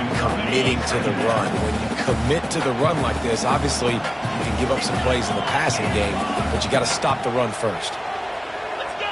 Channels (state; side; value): identical; both; correlation 1.00